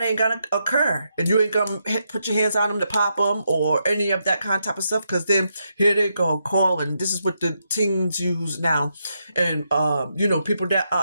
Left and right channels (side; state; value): both; inverted; correlation -0.82